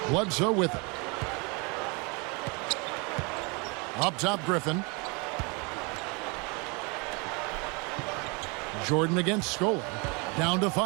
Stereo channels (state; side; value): quieter; left; 30.6 dB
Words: Bledsoe with it. Up top, Griffin. Jordan against Scola. Down to